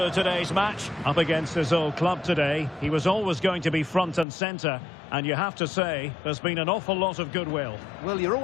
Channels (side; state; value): right; drops out; at 4.2 s